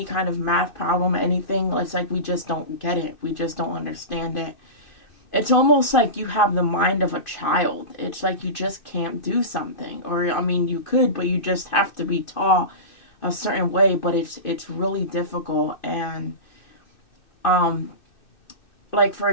kind of math problem, anything, it's like we just don't get it. We just don't understand it. It's almost like you have the mind of a child. It's like you just can't do something. Or, I mean, you could, but you just have to be taught a certain way. But it's really difficult. And, like, for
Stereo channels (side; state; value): right; late; 2.6 ms